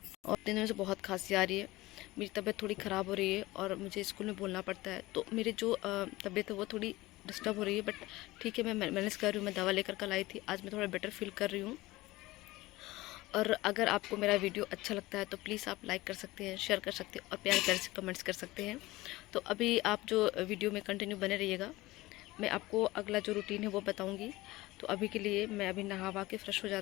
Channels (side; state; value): right; quieter; 19.2 dB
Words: और दिन में से बहुत खांसी आ रही है, मेरी तबीयत थोड़ी ख़राब हो रही है और मुझे स्कूल में बोलना पड़ता है। तो मेरी जो तबीयत है वो थोड़ी डिस्टर्ब हो रही है, बट ठीक है, मैं मैनेज कर रही हूँ। मैं दवा लेकर कल आई थी, आज मैं थोड़ा बेटर फील कर रही हूँ। और अगर आपको मेरा वीडियो अच्छा लगता है तो प्लीज़ आप लाइक कर सकते हैं, शेयर कर सकते हैं और प्यार प्यार से कमेंट्स कर सकते हैं। तो अभी आप जो वीडियो में कंटिन्यू बने रहिएगा, मैं आपको अगला जो रूटीन है वो बताऊंगी। तो अभी के लिए मैं अभी नहा वहा के फ्रेश हो